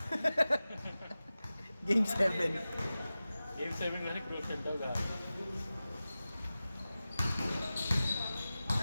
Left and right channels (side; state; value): both; inverted; correlation -0.95